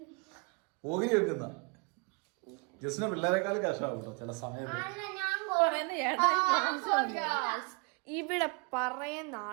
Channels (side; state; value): left; quieter; 32.4 dB